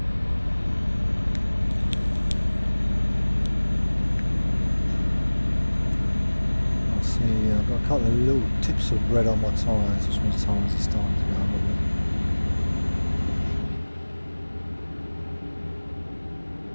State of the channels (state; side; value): inverted; both; correlation -1.00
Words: I see I've got a couple of little tips of red on my tyres, which means tyres are starting to go a little bit.